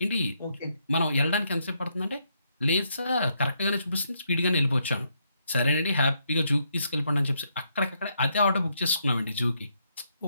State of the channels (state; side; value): inverted; both; correlation -0.76